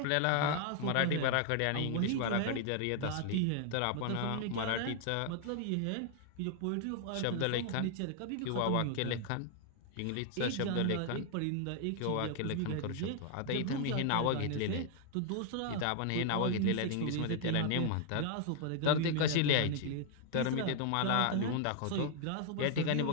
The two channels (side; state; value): both; different; correlation 0.00